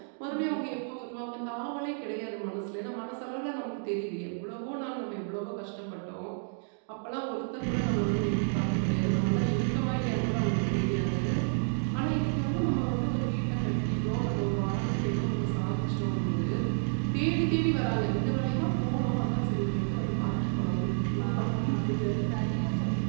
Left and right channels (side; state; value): left; silent; 58 dB below the other